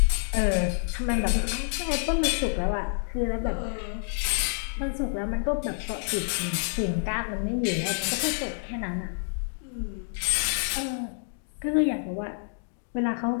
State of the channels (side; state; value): right; silent; digital silence